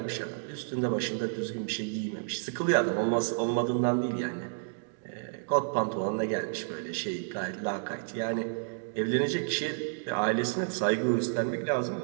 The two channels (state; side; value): silent; left; digital silence